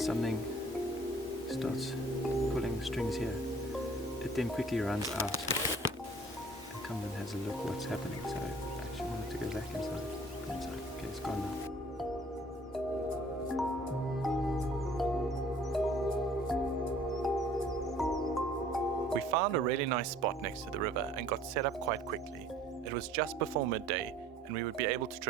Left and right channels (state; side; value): normal; both; correlation 0.53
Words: starts pulling the strings here, it then quickly runs out and comes and has a look what's happening. So I actually want it to go back inside. Okay, it's gone now. We found a really nice spot next to the river and got set up quite quickly. It was just before midday, and we would be able to